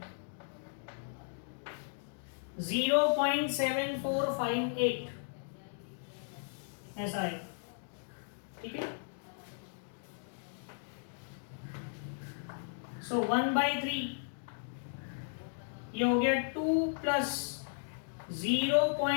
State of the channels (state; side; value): silent; right; digital silence